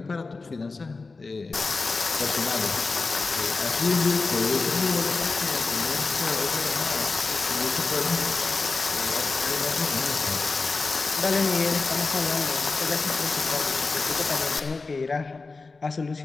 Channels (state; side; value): quieter; right; 3.9 dB